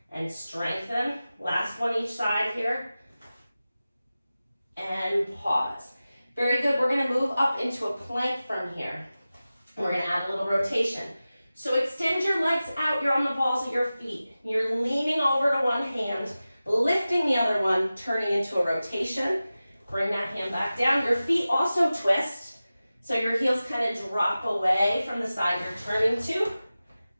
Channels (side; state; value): both; inverted; correlation -0.95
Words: and strengthen. Last one each side here. And pause. Very good. We're going to move up into a plank from here. And we're going to add a little rotation. So extend your legs out. You're on the balls of your feet. You're leaning over to one hand, lifting the other one, turning into a rotation. Bring that hand back down. Your feet also twist. So your heels kind of drop away from the side you're turning to